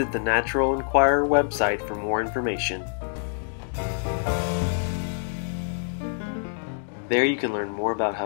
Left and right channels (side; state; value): right; silent; digital silence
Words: the Natural Enquirer website for more information. There you can learn more about